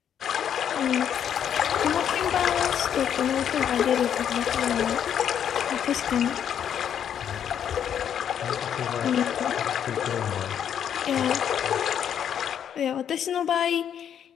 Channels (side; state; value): right; quieter; 9.0 dB